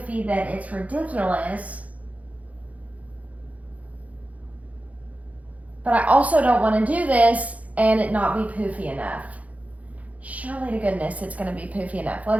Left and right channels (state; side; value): late; left; 0.070 ms